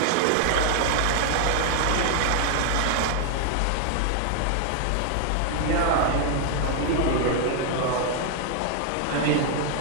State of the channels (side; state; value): both; different; correlation 0.00